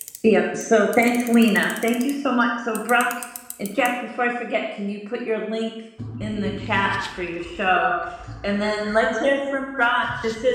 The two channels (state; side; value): identical; both; correlation 1.00